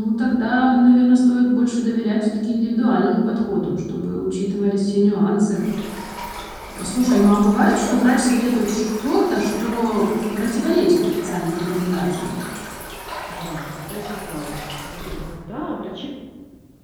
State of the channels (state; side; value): identical; both; correlation 1.00